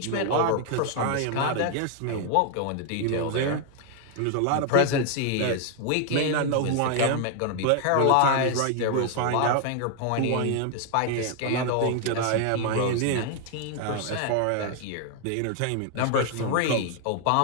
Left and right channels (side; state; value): both; different; correlation 0.00